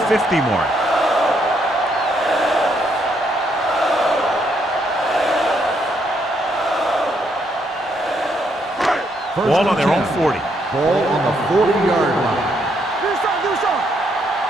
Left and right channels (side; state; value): both; normal; correlation 0.74